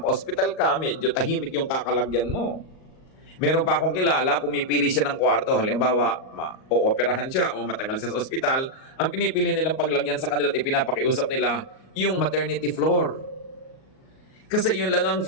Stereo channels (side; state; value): right; late; 38 ms